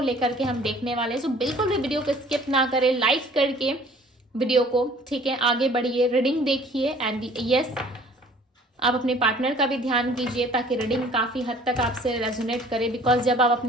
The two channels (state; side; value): normal; both; correlation 0.53